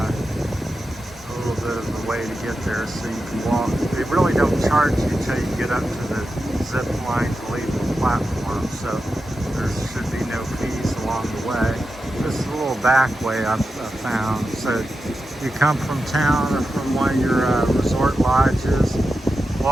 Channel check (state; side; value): normal; both; correlation 0.90